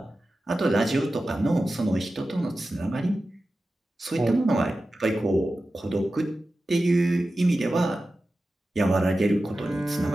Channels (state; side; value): normal; both; correlation 0.94